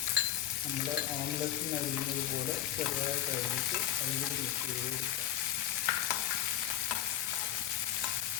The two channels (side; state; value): right; quieter; 11.8 dB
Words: നമ്മൾ ഓംലെറ്റിന് അരിഞ്ഞത് പോലെ ചെറുതായിട്ട് അരിഞ്ഞിട്ട് അതിലൂടെ മിക്സ് ചെയ്ത് കൊടുക്കുക.